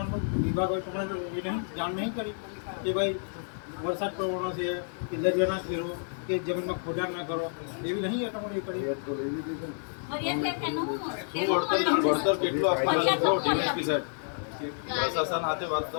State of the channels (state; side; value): silent; right; digital silence